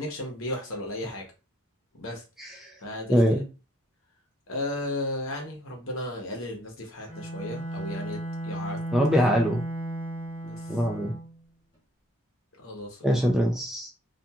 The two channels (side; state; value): both; normal; correlation 0.68